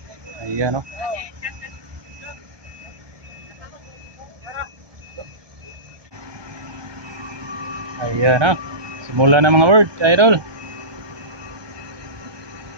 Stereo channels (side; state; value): left; late; 1.2 ms